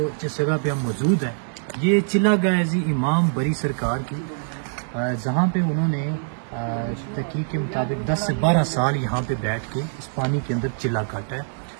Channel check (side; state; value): left; silent; digital silence